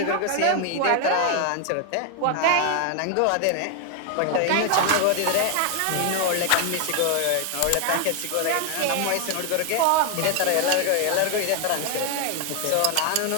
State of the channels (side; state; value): both; different; correlation 0.01